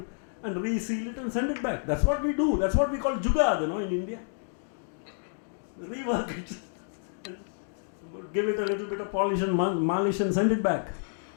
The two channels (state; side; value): silent; right; digital silence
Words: reseal it and send it back? That's what we do. That's what we call jugad, in India. Rework it. And give it a little bit of polish and malish and send it back.